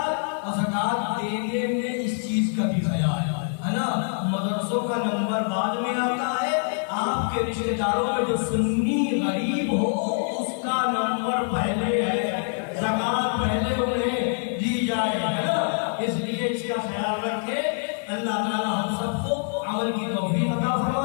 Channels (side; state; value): right; silent; 57 dB below the other